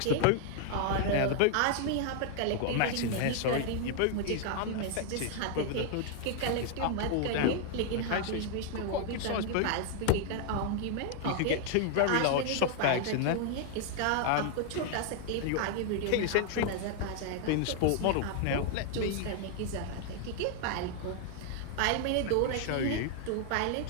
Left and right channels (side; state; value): both; different; correlation 0.00